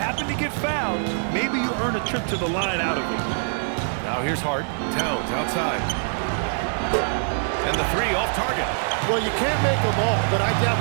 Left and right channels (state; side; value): silent; left; digital silence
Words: to get fouled, maybe you earn a trip to the line out of it. Now here's Hart. Towns outside. And the 3 off target. Well, you can't make them all, but I doubt